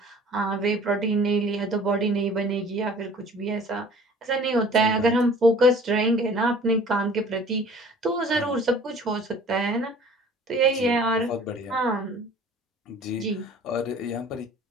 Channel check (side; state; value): both; normal; correlation 0.48